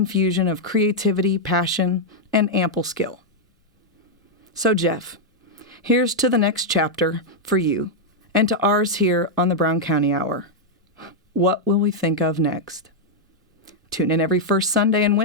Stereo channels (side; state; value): both; normal; correlation -0.03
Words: of creativity, passion, and ample skill. So, Jeff, here's to the next chapter for you, and to ours here on the Brown County Hour. What will we think of next? Tune in every first Sunday and